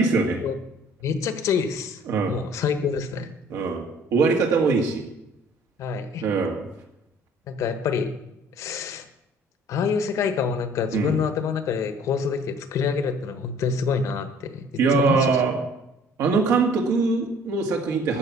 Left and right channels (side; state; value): both; normal; correlation 0.53